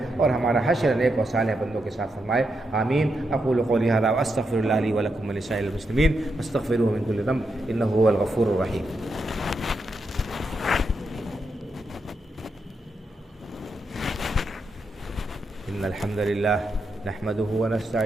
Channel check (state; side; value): normal; both; correlation 0.84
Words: اور ہمارا حشر نیک و صالح بندوں کے ساتھ فرمائے، آمین۔ اقول قولی ھذا واستغفر اللہ لی ولکم ولسائر المسلمین واستغفروہ من کل ذنب انہ هو الغفور الرحیم۔ ان الحمد للہ نحمده